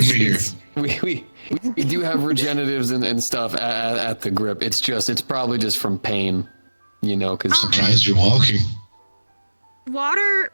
be here. We do have regeneratives and stuff at the grip. It's probably just from pain, you know, because Surprised you're walking.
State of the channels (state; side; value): inverted; both; correlation -1.00